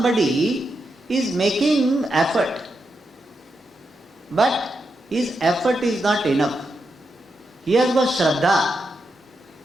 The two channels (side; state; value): both; normal; correlation 0.85